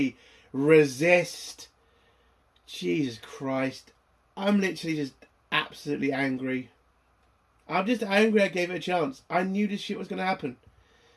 resist. Jesus Christ. I'm literally just absolutely angry. I'm just angry I gave it a chance. I knew this shit was going to happen.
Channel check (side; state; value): both; identical; correlation 1.00